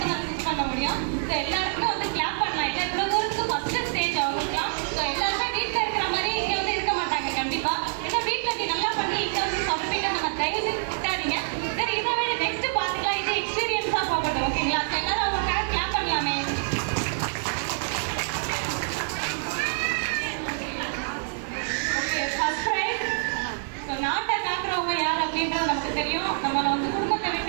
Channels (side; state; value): left; silent; 61 dB below the other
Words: தான் சூஸ் பண்ண முடியும். ஸோ எல்லாருக்குமே வந்து கிளாப் பண்ணலாம். இல்லை இவ்வளோ தூரத்துக்கு ஃபர்ஸ்ட் ஸ்டேஜ் அவங்களுக்குலாம். ஸோ எல்லாருமே வீட்டில் இருக்கிற மாதிரி இங்கே வந்து இருக்க மாட்டாங்க கண்டிப்பாக. ஏன்னா வீட்டில் நீ நல்லா பண்ணி இங்கே வந்து சொதப்பிட்டு நம்ம தயவு செஞ்சு திட்டாதீங்க. சரி இதை விட நெக்ஸ்ட் பார்த்துக்கலாம். இது எக்ஸ்பீரியன்ஸாக போகட்டும் ஓகேங்களா? ஸோ எல்லாரும் அவங்களுக்காக கிளாப் பண்ணலாமே. First prize. ஸோ நாட்டை காக்குறவங்க யார் அப்படின்றது நமக்கு தெரியும். நம்ம வந்து குடும்பத்தை